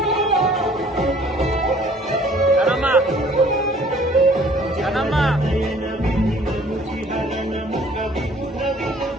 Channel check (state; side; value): normal; both; correlation 0.55